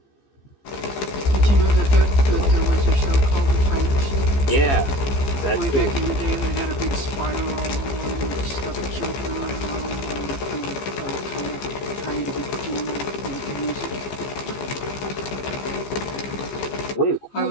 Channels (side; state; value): right; late; 15 ms